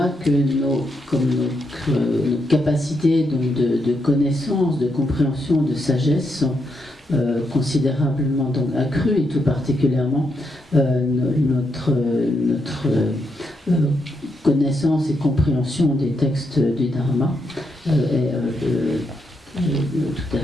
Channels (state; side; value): normal; both; correlation 0.81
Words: que nos capacités donc de connaissance, de compréhension, de sagesse sont considérablement donc accru, et tout particulièrement notre connaissance et compréhension des textes du Dharma est tout à